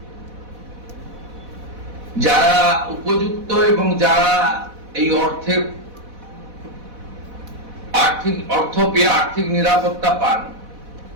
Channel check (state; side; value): late; left; 4.1 ms